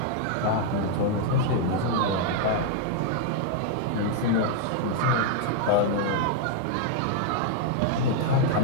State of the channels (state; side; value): different; both; correlation -0.01